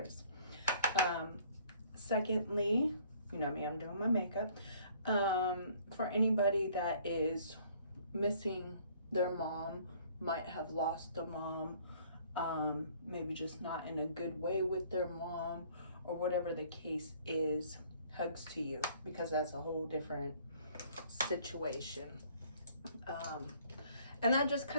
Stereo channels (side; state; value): both; inverted; correlation -0.58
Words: Secondly, you know me, I'm doing my makeup. For anybody that is missing their mom, might have lost a mom, maybe just not in a good way with their mom, or whatever the case is, hugs to you, because that's a whole different situation. And that just